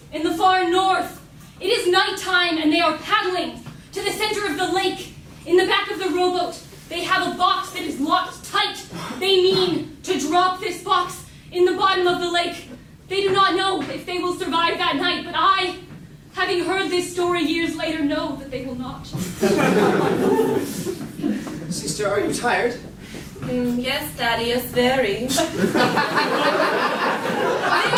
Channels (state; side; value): identical; both; correlation 1.00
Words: in the far north. It is nighttime and they are paddling to the center of the lake. In the back of the rowboat, they have a box that is locked tight. They mean to drop this box in the bottom of the lake. They do not know if they will survive that night, but I, having heard this story years later, know that they will not. Sister, are you tired? Yes, Daddy, yes, very. They are